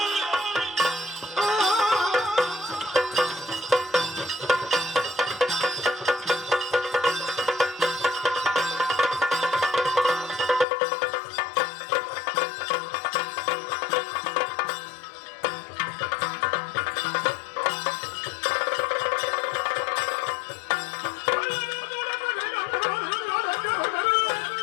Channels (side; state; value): right; drops out; at 10.7 s